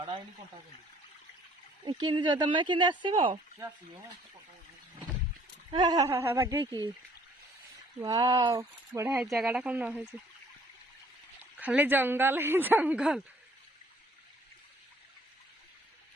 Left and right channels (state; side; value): normal; both; correlation 0.59